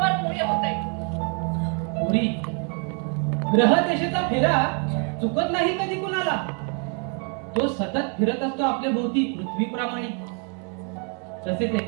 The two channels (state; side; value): quieter; left; 39.5 dB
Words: होतंय. पुरी, ग्रह देशाचा फेरा चुकत नाही कधी कुणाला. तो सतत फिरत असतो आपल्या भोवती पृथ्वीप्रमाणे. तसेच